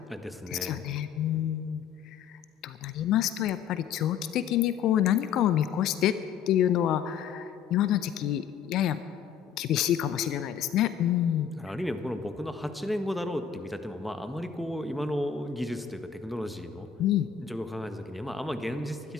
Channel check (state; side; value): quieter; right; 8.0 dB